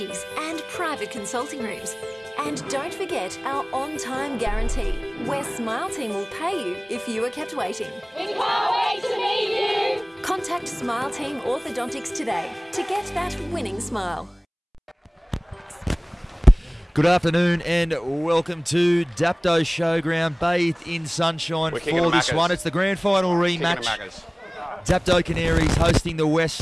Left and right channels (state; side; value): identical; both; correlation 1.00